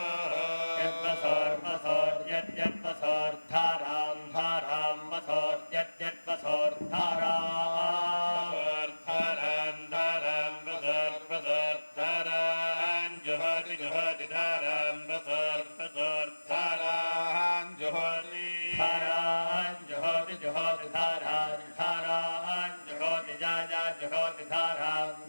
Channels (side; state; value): both; inverted; correlation -1.00